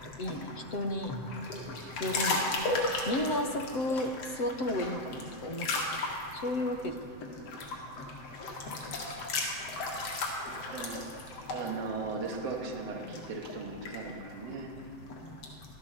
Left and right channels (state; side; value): late; right; 7.7 ms